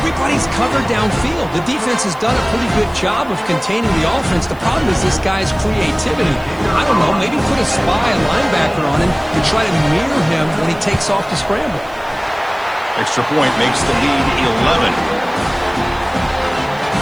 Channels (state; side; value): noise; right; hiss, 27 dB below the sound